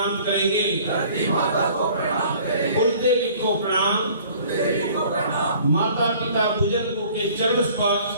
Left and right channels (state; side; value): inverted; both; correlation -0.52